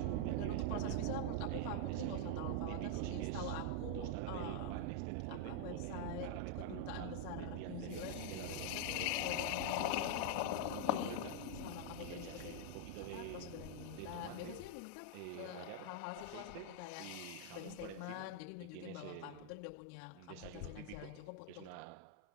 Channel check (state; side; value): different; both; correlation 0.00